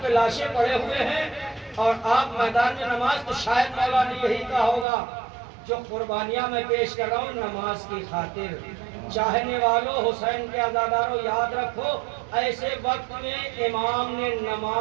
کے لاشیں پڑے ہوئے ہیں اور آپ میدان میں نماز، تو شاید مولا نے یہی کہا ہوگا جو قربانیاں میں پیش کر رہا ہوں نماز کی خاطر۔ چاہنے والوں، حسین کے عزاداروں، یاد رکھو ایسے وقت میں امام نے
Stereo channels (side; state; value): left; drops out; at 4.9 s